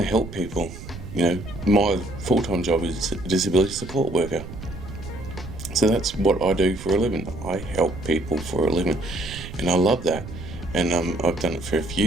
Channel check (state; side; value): noise; right; rumble, 12 dB below the sound